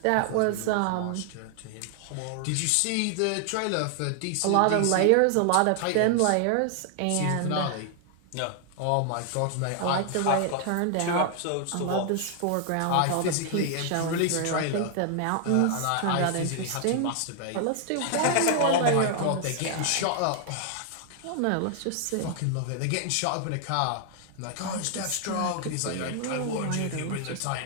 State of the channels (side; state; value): both; different; correlation 0.00